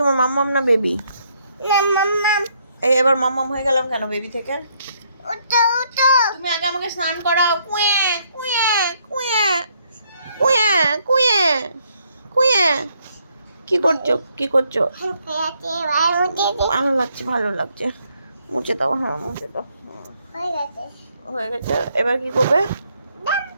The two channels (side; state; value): both; inverted; correlation -0.72